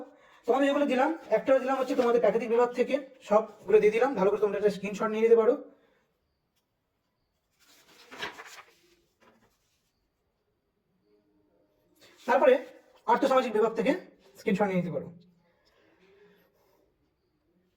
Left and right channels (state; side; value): identical; both; correlation 1.00